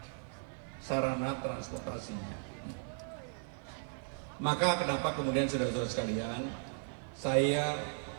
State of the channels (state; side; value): silent; left; 54 dB below the other